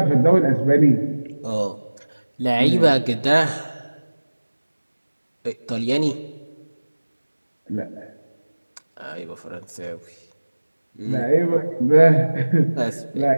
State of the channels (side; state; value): both; inverted; correlation -1.00